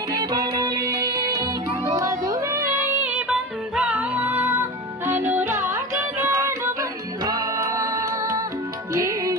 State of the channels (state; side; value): normal; both; correlation 0.28